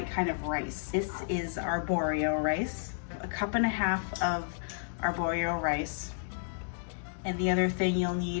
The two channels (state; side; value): silent; right; digital silence